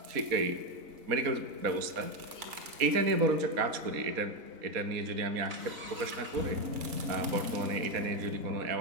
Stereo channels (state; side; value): late; left; 4.2 ms